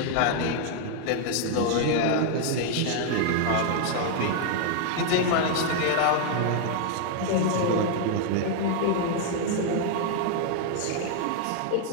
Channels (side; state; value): both; different; correlation 0.00